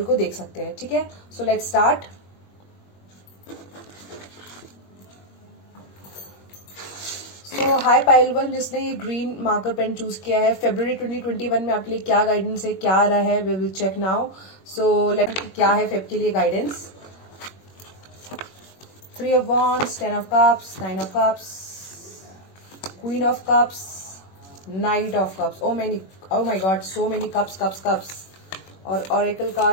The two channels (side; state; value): right; late; 21 ms